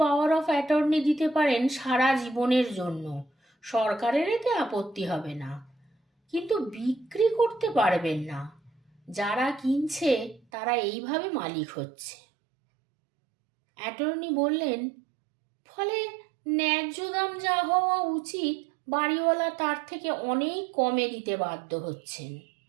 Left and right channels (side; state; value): left; drops out; at 10.4 s